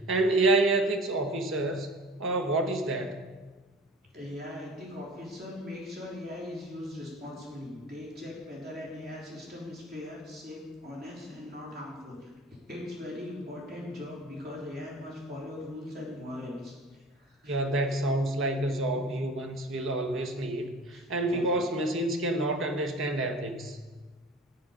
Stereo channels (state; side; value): normal; both; correlation 0.41